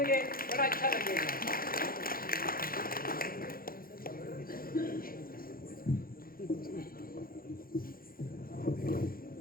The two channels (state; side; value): late; right; 0.42 ms